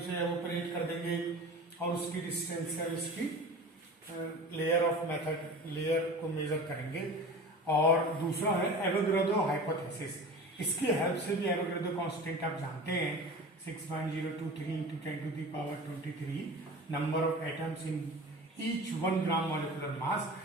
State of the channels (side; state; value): both; normal; correlation 0.35